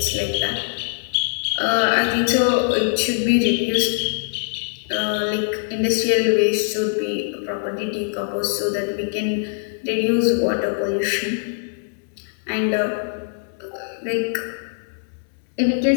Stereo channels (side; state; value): right; silent; 64 dB below the other